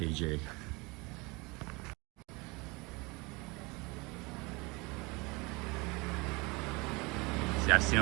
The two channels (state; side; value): quieter; left; 26.2 dB